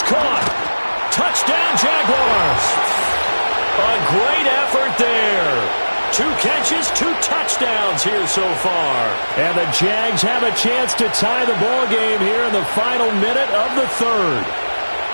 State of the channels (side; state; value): both; inverted; correlation -1.00